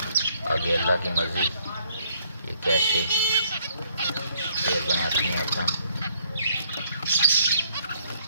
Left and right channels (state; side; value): inverted; both; correlation -0.65